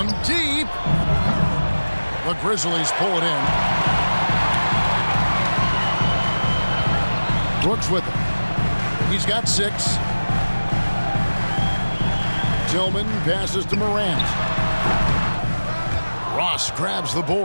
deep. The Grizzlies pull it in. Brooks with it. He's got 6. Tillman passes to Morant. Ross grabs the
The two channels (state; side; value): inverted; both; correlation -1.00